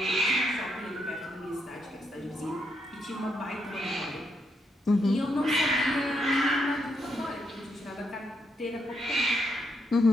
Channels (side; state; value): both; normal; correlation 0.78